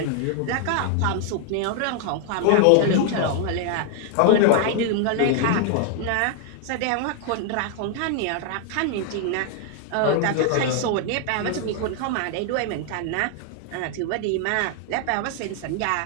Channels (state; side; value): different; both; correlation 0.00